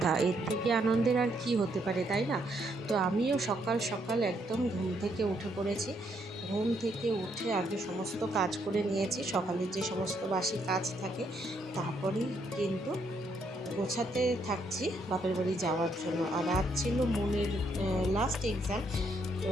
এর থেকে আনন্দের আর কি হতে পারে, তাই না? তো আমিও সকাল সকাল একদম ঘুম থেকে উঠে পড়েছি। ঘুম থেকে উঠে আগে সমস্ত কাজ করে নিয়েছি, সকালের যে সমস্ত বাসি কাজ থাকে, তারপরেই কিন্তু গোছাতে থাকছি বাপের বাড়ি যাওয়ার জন্য। আর আজ ছিল মনের লাস্ট এক্সাম, তো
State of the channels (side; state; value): both; normal; correlation 0.73